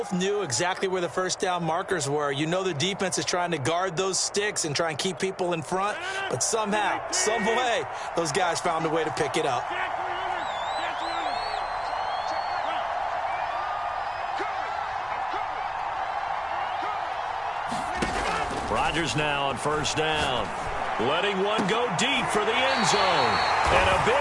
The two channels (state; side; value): identical; both; correlation 1.00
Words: knew exactly where the first down markers were. You know the defense is trying to guard those sticks and try and keep people in front, but somehow, some way, those guys found a way to pick it up. Rodgers now on first down. Letting one go deep for the end zone. And a